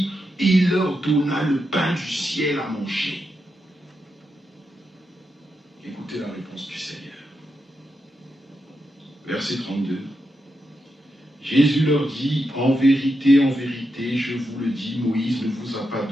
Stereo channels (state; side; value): normal; both; correlation 0.85